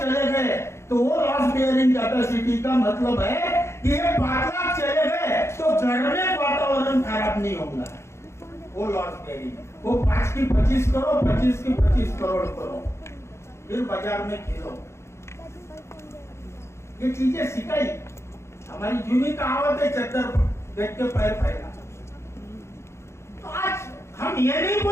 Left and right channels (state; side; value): late; right; 0.13 ms